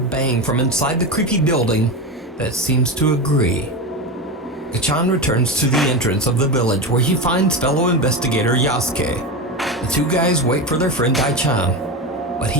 bang from inside the creepy building that seems to agree. Gachan returns to the entrance of the village where he finds fellow investigator Yasuke. The two guys wait for their friend Dai-chan, but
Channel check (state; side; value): normal; both; correlation 0.20